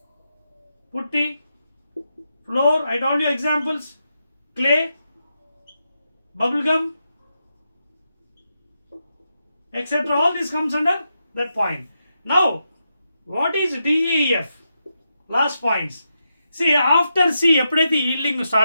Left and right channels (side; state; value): both; inverted; correlation -0.86